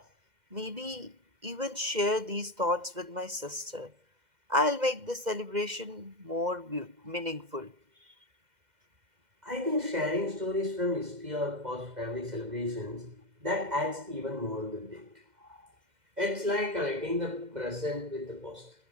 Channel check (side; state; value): left; late; 2.0 ms